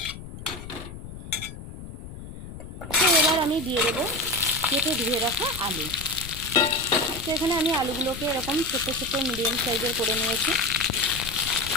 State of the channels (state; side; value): noise; left; rumble, 12 dB below the sound